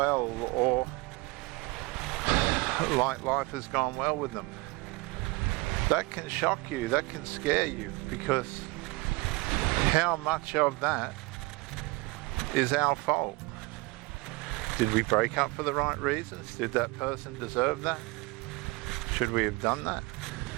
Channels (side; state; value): left; quieter; 24.5 dB